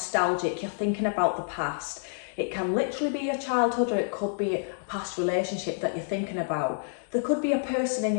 You're thinking about the past. It can literally be your childhood, or it could be a past relationship that you're thinking about. There could be a person in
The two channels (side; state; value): right; silent; digital silence